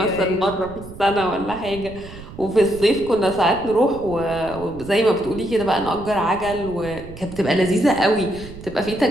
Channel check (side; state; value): right; noise; rumble, 15 dB below the sound